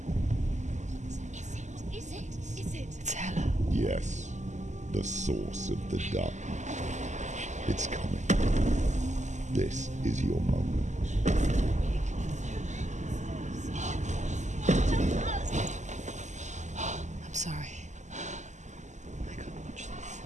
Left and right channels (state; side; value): late; left; 0.34 ms